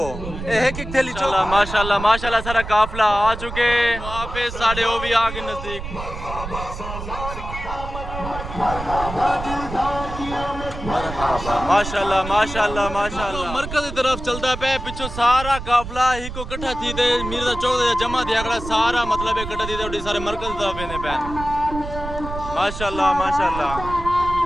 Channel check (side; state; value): right; noise; rumble, 9 dB below the sound